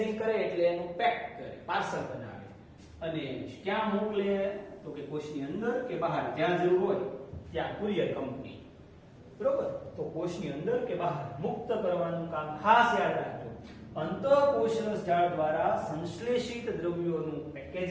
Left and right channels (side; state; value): both; identical; correlation 1.00